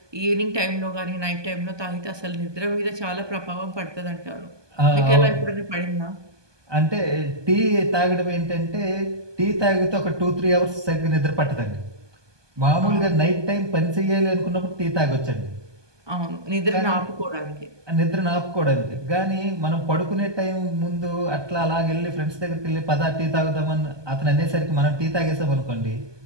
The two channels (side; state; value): left; late; 1.2 ms